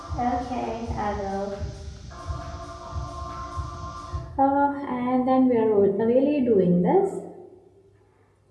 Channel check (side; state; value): both; identical; correlation 1.00